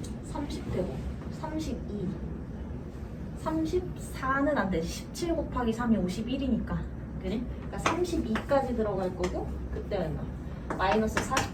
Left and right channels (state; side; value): identical; both; correlation 1.00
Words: 30회고 32 34는 안 되지. 17 곱하기 3이 51이니까 그지? 그러니까 32까지 들어갈 거고 그때 얼마? 마이너스